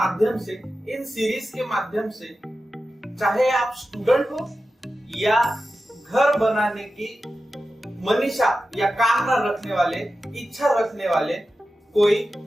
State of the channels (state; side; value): normal; both; correlation 0.93